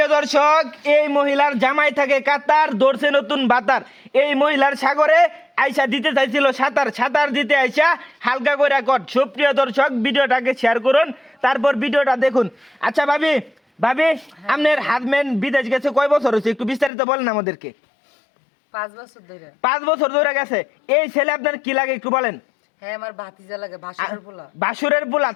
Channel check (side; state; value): right; drops out; at 16.9 s